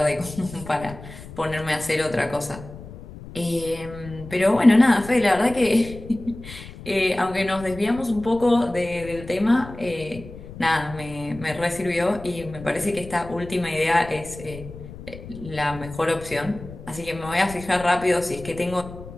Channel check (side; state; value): left; noise; rumble, 14 dB below the sound